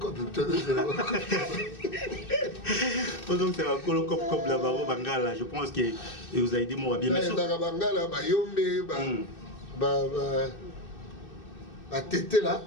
Donc c'est un colocop comme la Baro Bangala. Je pense que vous avez dit moi bien. Mais dans Bangala, Yombe, tété là.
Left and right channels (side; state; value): right; late; 2.6 ms